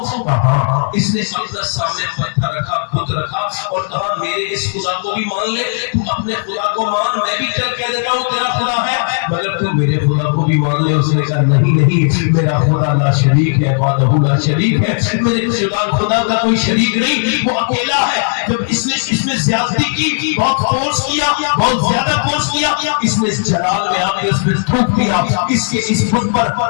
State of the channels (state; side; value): silent; right; digital silence